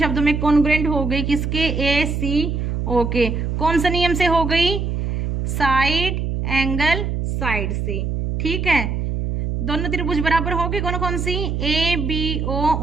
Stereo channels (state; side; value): noise; right; hum, 2 dB below the sound